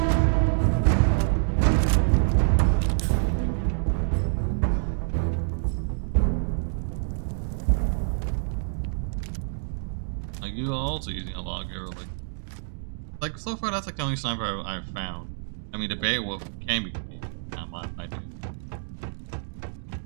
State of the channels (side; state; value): left; silent; digital silence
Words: Like you are also using a log arrow, like so far that's like the only sniper I've found. I mean the Beowulf can be not my idea.